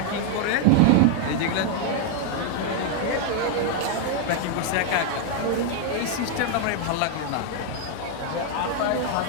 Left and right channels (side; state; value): both; different; correlation 0.00